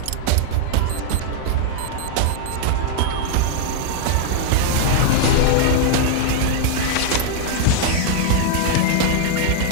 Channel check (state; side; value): different; both; correlation 0.00